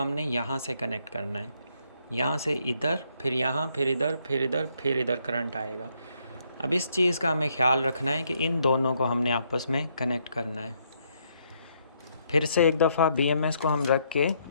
यहाँ से कनेक्ट करना है, यहाँ से इधर, फिर यहाँ, फिर इधर, फिर इधर, फिर इधर करंट आएगा। अब इस चीज़ का हमें ख्याल रखना है कि इन दोनों को हमने आपस में कनेक्ट करना है। फिर से एक दफ़ा BMS को हम रख के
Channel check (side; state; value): both; inverted; correlation -0.72